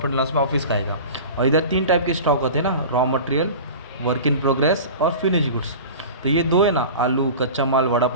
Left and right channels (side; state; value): both; inverted; correlation -0.35